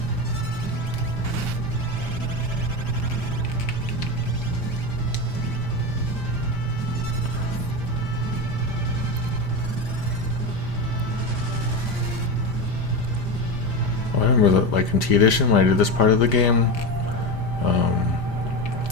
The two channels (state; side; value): late; right; 5.0 ms